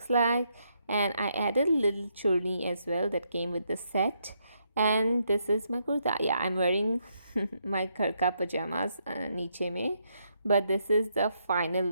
like. And I added a little churni as well that came with the set. And this is my kurta. Yeah, I'm wearing my karka pajamas niche mein, but this is the final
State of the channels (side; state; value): both; inverted; correlation -0.77